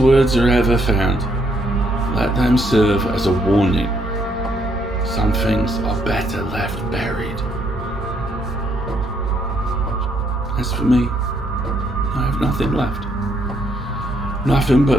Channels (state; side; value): normal; both; correlation 0.72